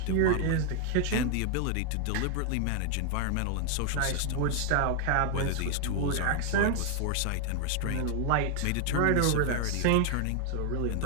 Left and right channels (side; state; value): both; different; correlation 0.00